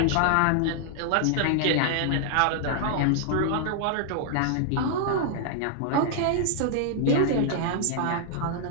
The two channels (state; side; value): different; both; correlation -0.01